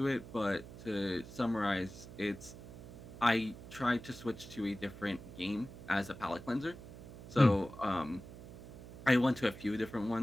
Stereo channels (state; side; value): noise; right; hum, 14 dB below the sound